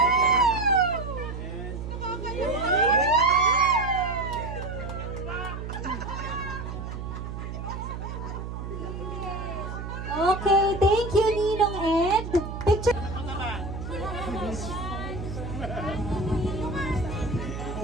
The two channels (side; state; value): right; noise; hum, 7 dB below the sound